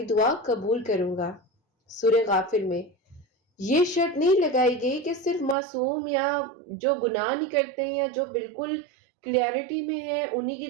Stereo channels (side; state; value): left; drops out; at 5.6 s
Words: دعا قبول کروں گا۔ سورہ غافر میں یہ شرط نہیں لگائی گئی کہ صرف معصوم یا جو گناہ نہیں کرتے یا جو بالکل کلیئرٹی میں ہے انہی کی